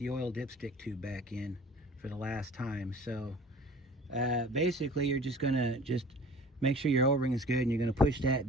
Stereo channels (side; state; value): both; normal; correlation 0.45